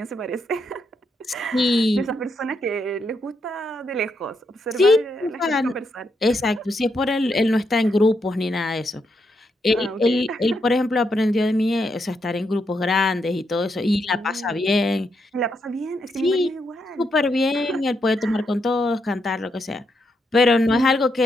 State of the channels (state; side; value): normal; both; correlation 0.80